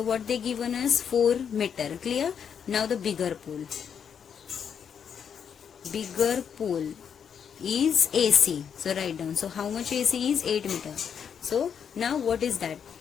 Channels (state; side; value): quieter; right; 7.5 dB